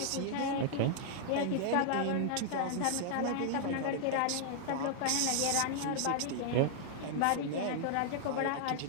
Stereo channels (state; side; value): different; both; correlation -0.01